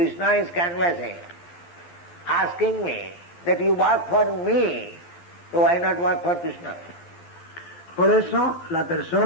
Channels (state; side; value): late; right; 11 ms